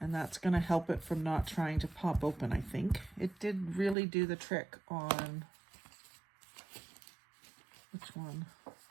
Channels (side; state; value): left; drops out; at 4.0 s